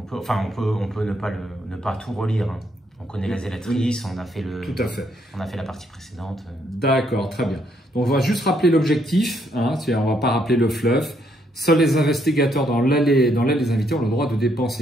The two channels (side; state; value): both; normal; correlation 0.72